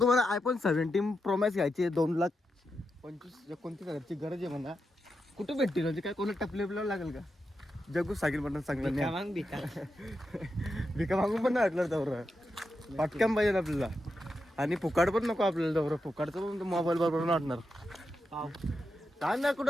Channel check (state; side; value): normal; both; correlation 0.87